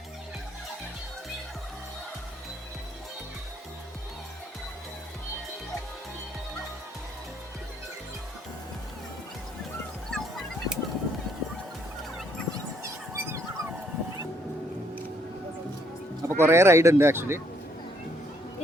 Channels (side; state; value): both; normal; correlation 0.68